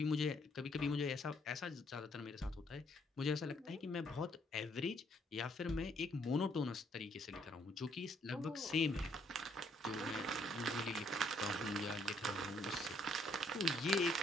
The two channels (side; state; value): both; normal; correlation 0.68